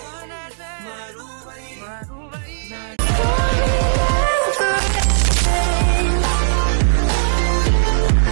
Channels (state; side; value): silent; left; digital silence